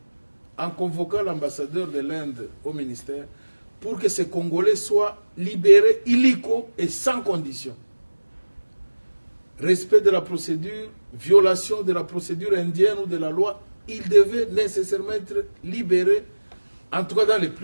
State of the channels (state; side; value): inverted; both; correlation -1.00